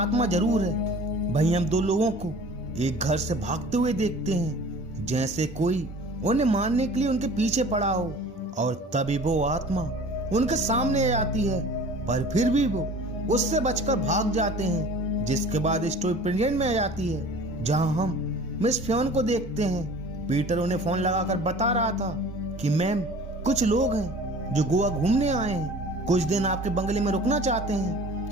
जरूर है। भाई हम दो लोगों को एक घर से भागते हुए देखते हैं, जैसे कोई उन्हें मारने के लिए उनके पीछे पड़ा हो। और तभी वो आत्मा उनके सामने आ जाती है, पर फिर भी वो उससे बचकर भाग जाते हैं। जिसके बाद स्टोरी प्रेजेंट में आ जाती है, जहां हम मिस फियोन को देखते हैं। पीटर उन्हें फोन लगाकर बता रहा था कि मैम, कुछ लोग हैं जो गोवा घूमने आए हैं, कुछ दिन आपके बंगले में रुकना चाहते हैं,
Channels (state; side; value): normal; both; correlation 0.44